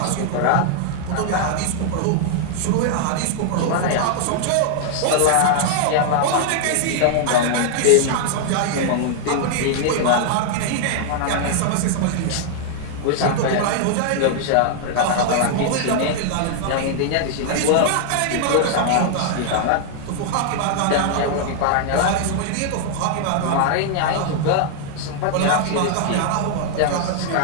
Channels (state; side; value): different; both; correlation 0.00